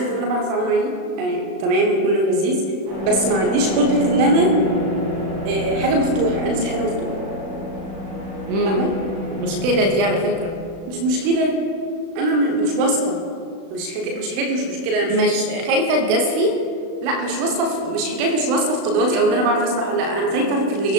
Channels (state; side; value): late; left; 36 ms